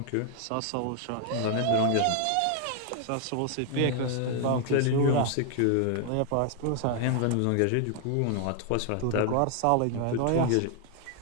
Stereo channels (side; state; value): both; different; correlation 0.00